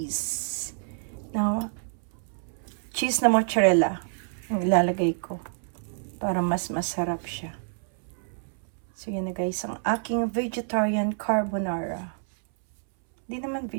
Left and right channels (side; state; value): left; silent; 60 dB below the other